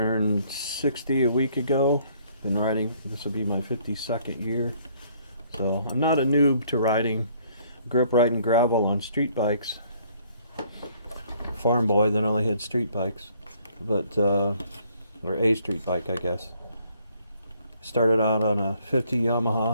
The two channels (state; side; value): inverted; both; correlation -0.64